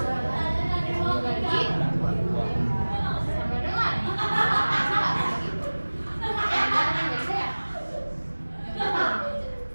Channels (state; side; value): inverted; both; correlation -1.00